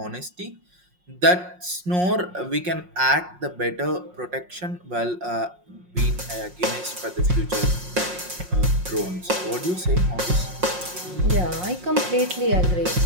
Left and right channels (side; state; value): left; late; 5.6 ms